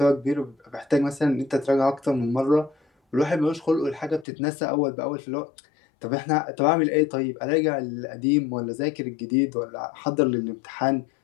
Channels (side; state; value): right; drops out; at 4.2 s